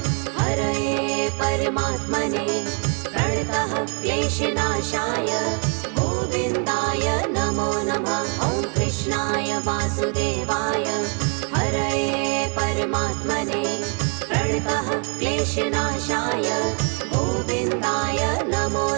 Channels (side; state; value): left; quieter; 35.6 dB